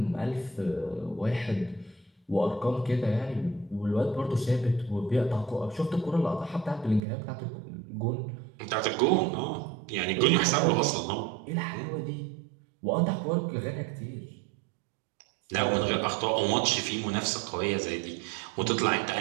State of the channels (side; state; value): left; drops out; at 7.0 s